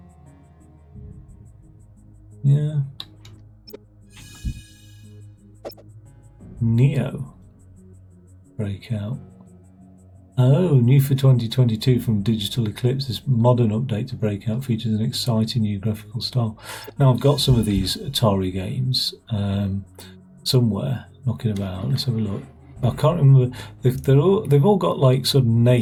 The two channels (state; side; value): identical; both; correlation 1.00